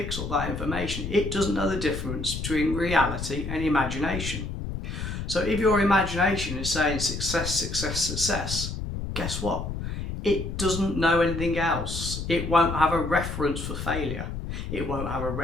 up that information. It doesn't know the difference between reality and imagination. So if your imagination is saying success, success, success, guess what? It doesn't know anything else. It won't have a reference for failure. It won't have a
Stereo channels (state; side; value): noise; left; rumble, 5 dB below the sound